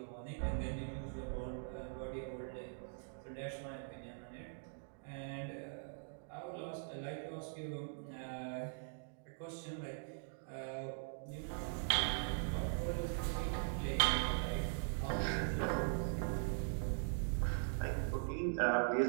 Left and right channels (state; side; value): silent; left; digital silence